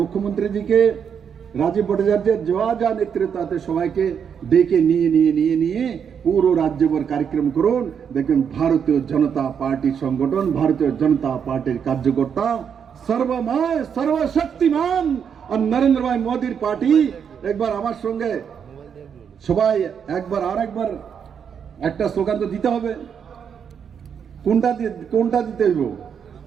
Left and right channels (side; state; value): left; quieter; 7.4 dB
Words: রাজীব ভট্টাচার্যের যা নেতৃত্বে সবাইকে ডেকে নিয়ে পুরো রাজ্যভর কার্যক্রম করুন। দেখবেন ভারতীয় জনতা পার্টির সংগঠন, ভারতীয় জনতা পার্টির কার্যকর্তা সর্বময় সর্বশক্তিমান আর নরেন্দ্র ভাই মোদীর পার্টি। একবার আমার সঙ্গে সবাই একবার একটা স্লোগান তো দিতে হবে। কোনটা দিতে হইব?